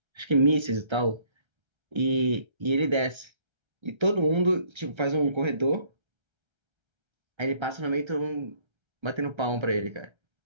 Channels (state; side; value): late; left; 1.3 ms